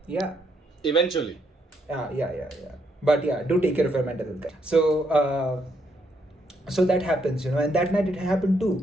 Yeah. Eventually. Yeah. But yeah, do take care of your mental health, guys. So that happens, and that night it happened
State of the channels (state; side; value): normal; both; correlation 0.75